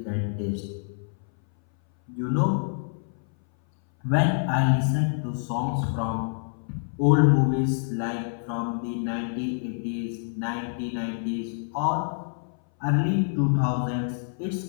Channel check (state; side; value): silent; right; 59 dB below the other